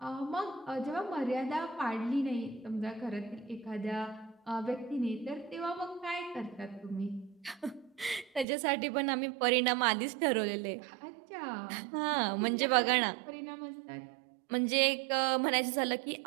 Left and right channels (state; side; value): drops out; left; at 8.5 s